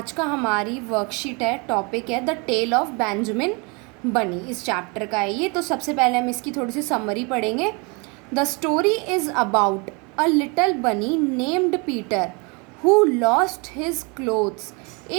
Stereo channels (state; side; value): quieter; left; 30.6 dB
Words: का हमारी वर्कशीट है, टॉपिक है द टेल ऑफ बेंजामिन बनी। इस चैप्टर का है ये। तो सबसे पहले हम इसकी थोड़ी सी समरी पढ़ेंगे। The story is about a little bunny named Peter who lost his clothes